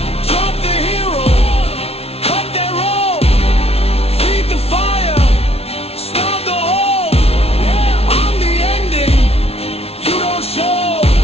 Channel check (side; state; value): right; late; 0.30 ms